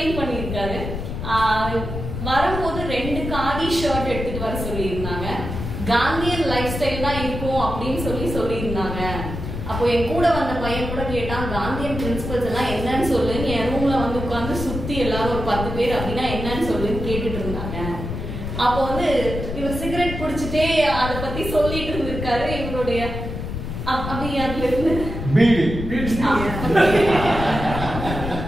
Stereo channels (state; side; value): noise; left; rumble, 6 dB below the sound